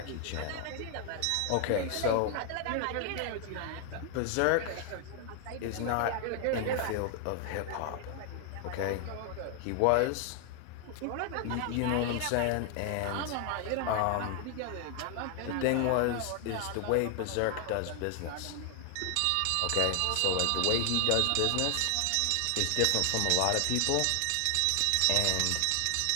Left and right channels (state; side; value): different; both; correlation 0.00